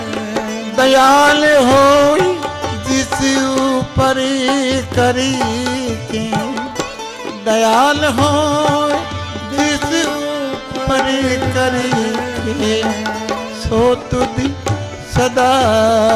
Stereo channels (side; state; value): both; identical; correlation 1.00